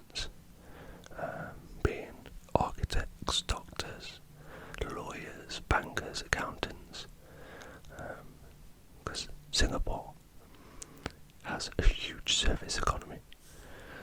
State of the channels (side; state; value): both; identical; correlation 1.00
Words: being architects, doctors, lawyers, bankers, accountants, because Singapore has a huge service economy.